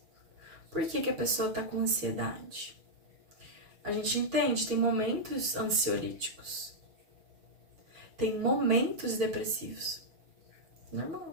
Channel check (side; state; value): left; late; 6.3 ms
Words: Por que que a pessoa tá com ansiedade? A gente entende, tem momentos ansiolíticos. Tem momentos depressivos. Normal.